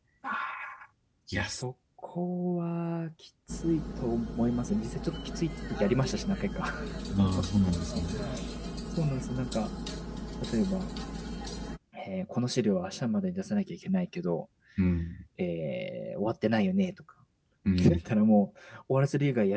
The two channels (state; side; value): identical; both; correlation 1.00